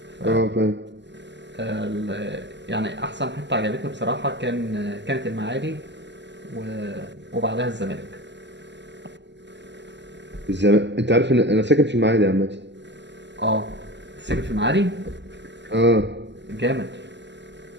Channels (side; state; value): left; late; 0.51 ms